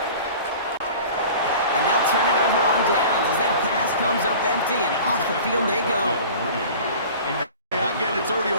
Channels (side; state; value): both; inverted; correlation -0.41